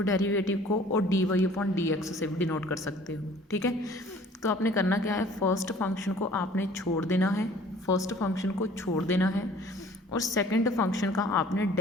डेरिवेटिव को, और d y upon d x से भी डिनोट कर सकते हो। ठीक है, तो आपने करना क्या है, फर्स्ट फंक्शन को आपने छोड़ देना है, फर्स्ट फंक्शन को छोड़ देना है और सेकंड फंक्शन का आपने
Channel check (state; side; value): normal; both; correlation 0.52